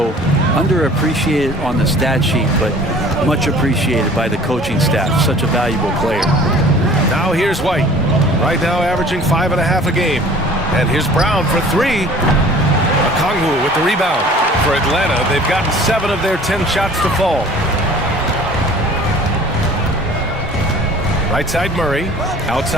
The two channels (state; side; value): normal; both; correlation 0.48